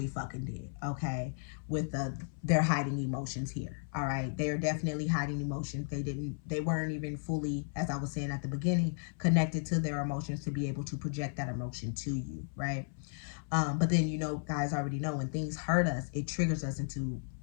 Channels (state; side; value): silent; right; 55 dB below the other